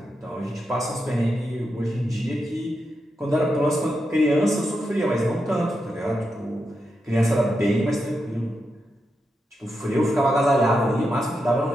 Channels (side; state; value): both; normal; correlation 0.86